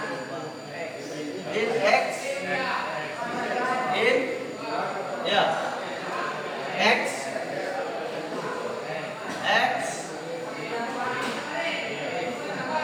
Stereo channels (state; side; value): identical; both; correlation 1.00